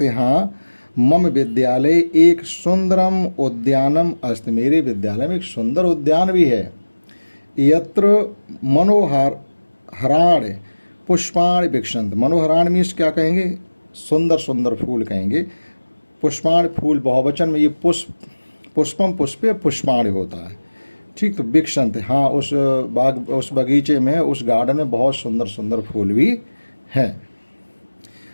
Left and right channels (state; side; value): inverted; both; correlation -1.00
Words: हैं, हाँ मम विद्यालय एक सुंदरम उद्यानम अस्ति, मेरे विद्यालय में एक सुंदर उद्यान भी है। यत्र मनोहर हराण पुष्पाण विक्षंत, मनोहराण मीन्स क्या कहेंगे, सुंदर सुंदर फूल कहेंगे। पुष्पाण फूल बहुवचन में, ये पुष्पम पुष्पे पुष्पाण होता है। ठीक, तो विक्षंत, हाँ उस बगीचे में, उस गार्डन में बहुत सुंदर सुंदर फूल भी हैं।